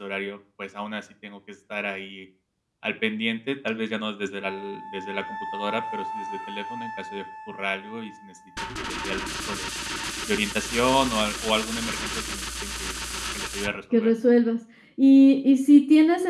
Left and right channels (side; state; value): both; identical; correlation 1.00